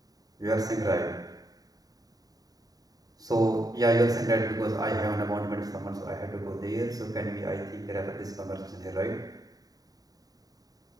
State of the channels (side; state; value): left; late; 0.18 ms